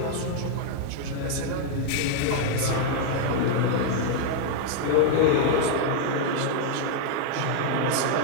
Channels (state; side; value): different; both; correlation 0.00